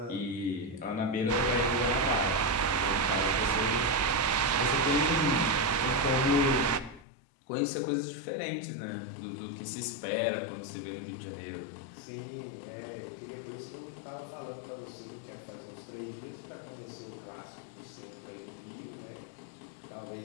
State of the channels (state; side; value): drops out; right; at 7.1 s